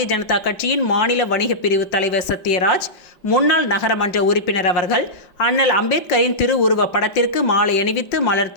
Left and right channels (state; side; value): late; right; 5.7 ms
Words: ஜனதா கட்சியின் மாநில வணிக பிரிவு தலைவர் சத்யராஜ், முன்னாள் நகரமன்ற உறுப்பினர் அவர்கள் அண்ணல் அம்பேத்கரின் திருவுருவ படத்திற்கு மாலை அணிவித்து மலர்